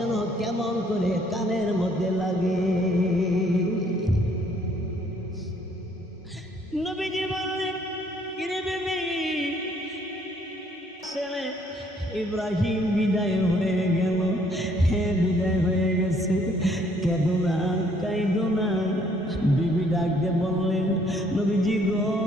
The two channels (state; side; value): normal; both; correlation 0.64